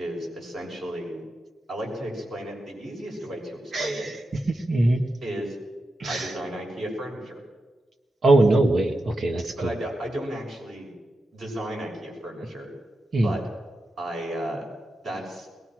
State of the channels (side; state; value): both; normal; correlation 0.89